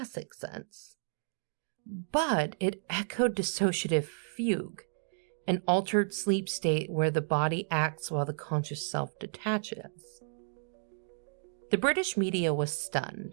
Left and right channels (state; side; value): silent; left; digital silence